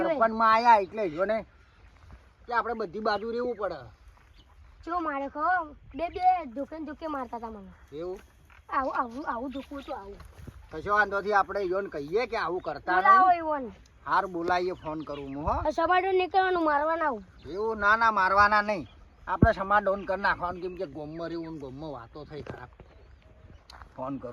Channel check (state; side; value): identical; both; correlation 1.00